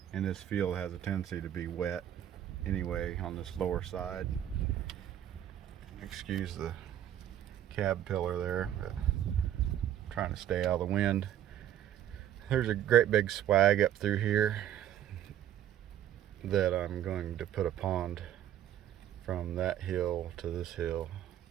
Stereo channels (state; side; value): quieter; left; 11.2 dB